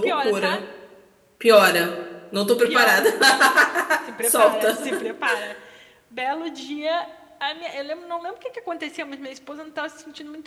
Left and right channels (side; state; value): both; identical; correlation 1.00